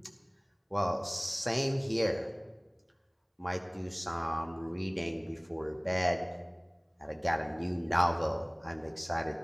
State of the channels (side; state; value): both; identical; correlation 1.00